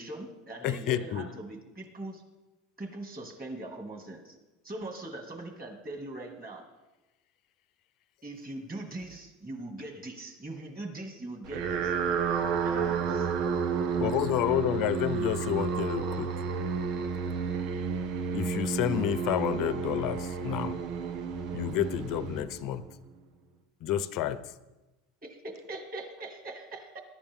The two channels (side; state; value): both; normal; correlation 0.32